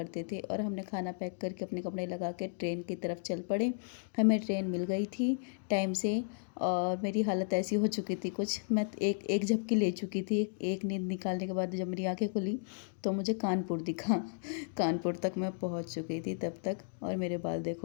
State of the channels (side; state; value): right; silent; digital silence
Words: थे। और हमने खाना पैक करके अपने कपड़े लगा के ट्रेन की तरफ चल पड़े। हमें ट्रेन मिल गई थी टाइम से। और मेरी हालत ऐसी हो चुकी थी कुछ, मैं एक एक झपकी ले चुकी थी। एक नींद निकालने के बाद जब मेरी आंखें खुली तो मुझे कानपुर दिखा। कानपुर तक मैं पहुंच चुकी थी तब तक। और मेरे बाल